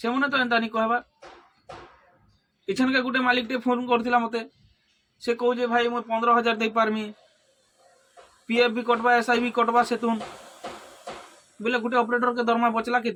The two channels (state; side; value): identical; both; correlation 1.00